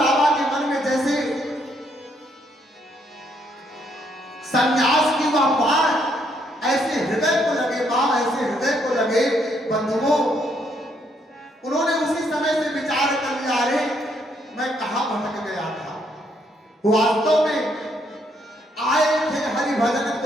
के मन में जैसे संन्यास की वह बाण ऐसे हृदय को लगे, मां ऐसे हृदय को लगे बंधुओं, उन्होंने उसी समय से विचार कर लिया, अरे मैं कहां भटक गया था। वास्तव में आए थे हरि भजन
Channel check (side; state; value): both; normal; correlation 0.72